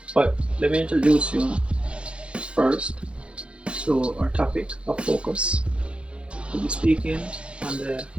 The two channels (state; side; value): late; left; 0.058 ms